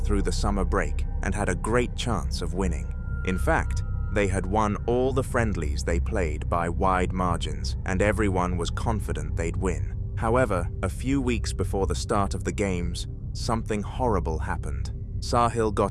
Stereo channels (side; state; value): both; identical; correlation 1.00